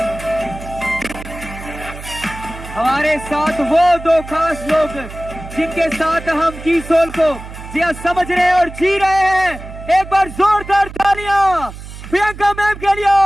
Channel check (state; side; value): noise; right; hum, 13 dB below the sound